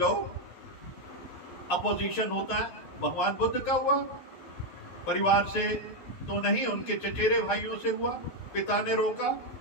अपोजिशन होता है, भगवान बुद्ध का हुआ, परिवार से तो नहीं, उनके चचेरे भाइयों से हुआ, पिता ने रोका,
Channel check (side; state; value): right; late; 11 ms